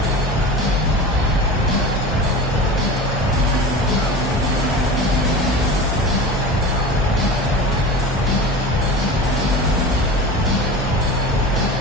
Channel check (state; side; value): normal; both; correlation 0.32